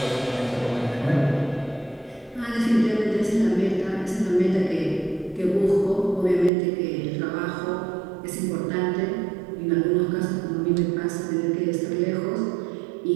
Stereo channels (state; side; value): drops out; left; at 6.5 s